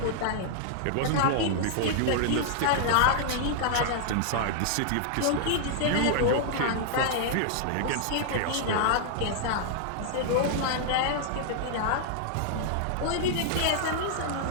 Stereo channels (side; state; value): both; different; correlation -0.01